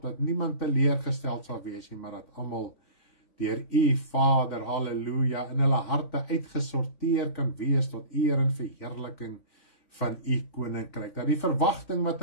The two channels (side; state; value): right; late; 3.5 ms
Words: dat niemand teleurgesteld sal wees nie, maar dat almal deur U, Vader, halleluja, in hulle harte uitgesorteer kan wees tot eer en verheerliking van U koninkryk. Dat die verwagting wat